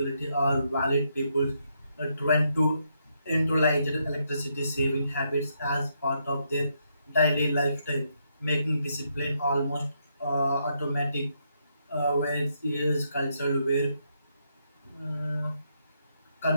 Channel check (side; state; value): both; inverted; correlation -0.78